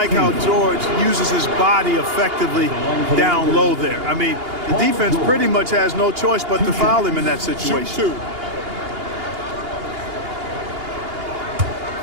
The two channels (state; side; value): late; left; 2.8 ms